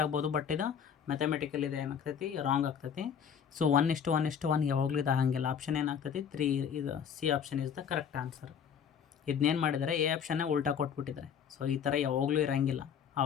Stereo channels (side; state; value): right; quieter; 7.6 dB